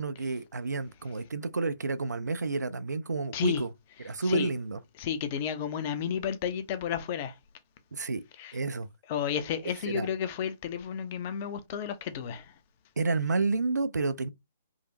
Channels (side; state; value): both; inverted; correlation -0.63